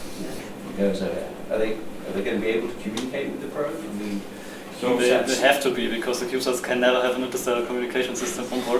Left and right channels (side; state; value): both; identical; correlation 1.00